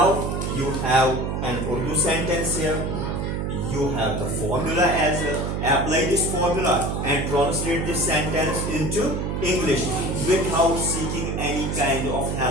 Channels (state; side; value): noise; right; hum, 1 dB below the sound